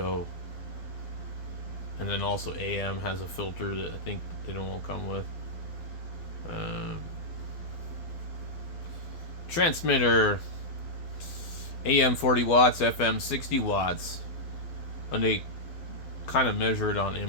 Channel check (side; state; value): right; late; 12 ms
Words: and then also AM has a filter that I think they don't come with. Transmitter, AM 40 watts, FM 60 watts, and they kind of measure it on